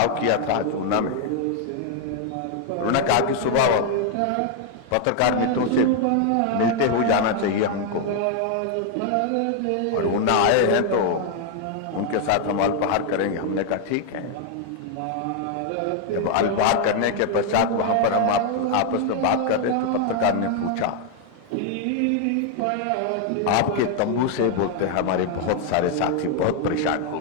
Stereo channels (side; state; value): both; different; correlation 0.00